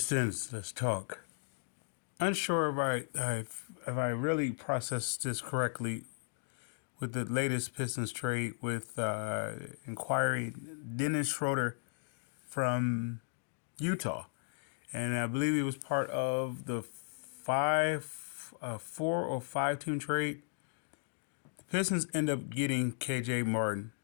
let's talk. Unsure if I really processed this correctly with the latest Pistons trade with inquiring Dennis Schroeder from Utah, and I believe he was part of the 4 or 5 team trade. The Pistons end up getting KJ Martin,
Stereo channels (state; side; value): silent; right; digital silence